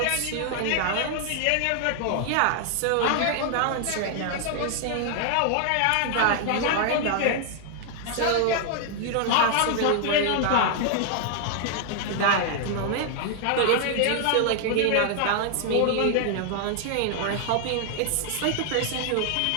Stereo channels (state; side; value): different; both; correlation 0.00